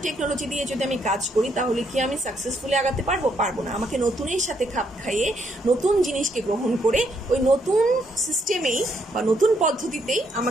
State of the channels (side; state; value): both; normal; correlation 0.74